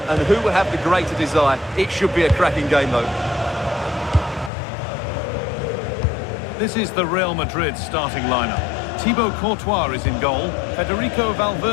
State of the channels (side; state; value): right; drops out; at 4.5 s